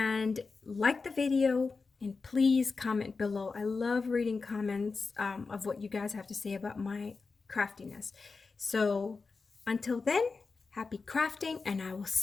like the video. And please comment below. I love reading comments of what you guys have to say about my craftiness. So until then, happy crafting, and I will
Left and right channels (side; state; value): right; quieter; 4.4 dB